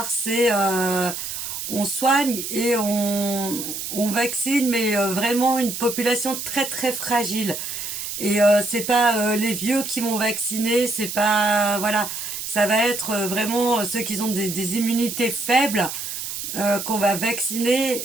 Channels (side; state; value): right; noise; hiss, 6 dB below the sound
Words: C'est on soigne et on vaccine, mais vraiment une population très très fragile. Et c'est pas les vieux qui vont vacciner, c'est pas voilà, ça va être vraiment ceux qui ont des immunités faibles qu'on va vacciner